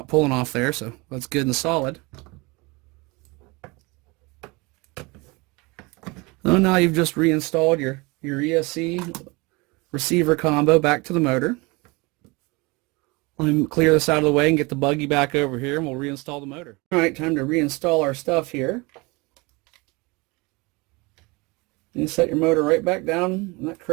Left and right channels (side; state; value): left; quieter; 25.8 dB